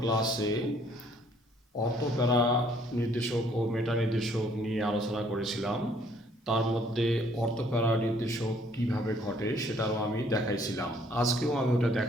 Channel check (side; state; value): both; normal; correlation 0.63